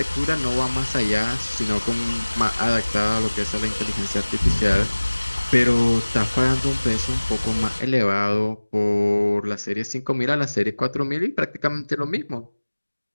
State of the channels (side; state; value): both; inverted; correlation -1.00